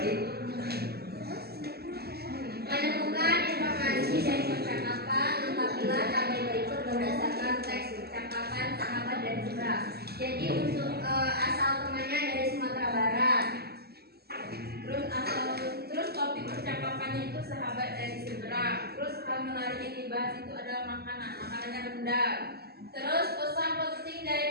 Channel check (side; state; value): left; late; 0.46 ms